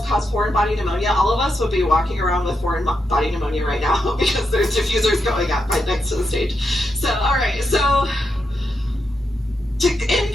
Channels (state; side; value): normal; both; correlation 0.84